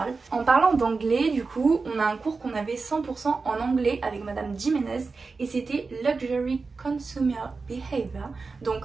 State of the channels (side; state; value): left; quieter; 4.3 dB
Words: En parlant d'anglais, du coup, on a un cours qu'on avait 100% en anglais avec madame Jiménez et c'était Luxury Consumer Behavior,